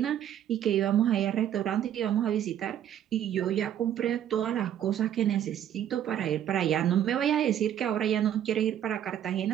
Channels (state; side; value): quieter; left; 10.5 dB